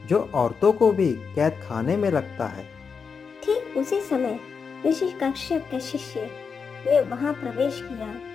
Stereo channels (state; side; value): quieter; right; 5.7 dB